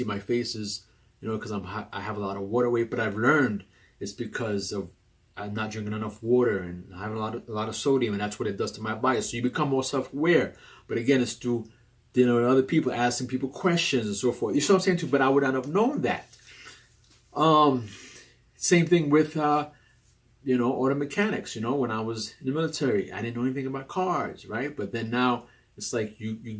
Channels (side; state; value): both; identical; correlation 1.00